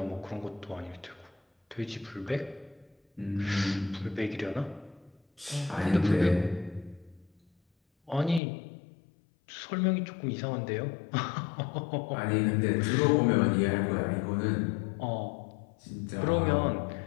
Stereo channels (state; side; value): drops out; right; at 8.4 s